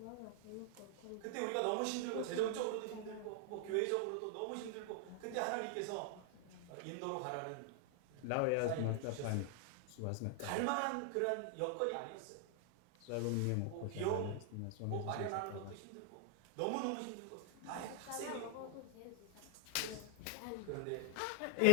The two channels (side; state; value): both; different; correlation 0.00